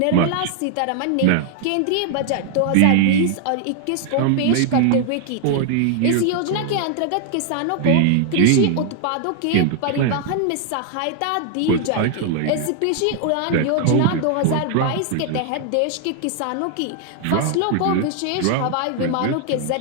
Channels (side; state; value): both; different; correlation 0.00